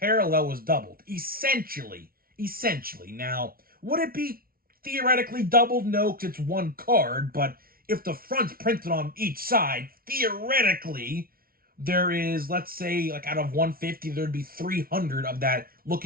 was doubled, essentially. Now, would it be theoretically doubled? No, because it's one card, but if the front's printed on each side, theoretically, there is, let's say, like out of 150, there'd be 300 of that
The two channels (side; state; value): left; late; 0.43 ms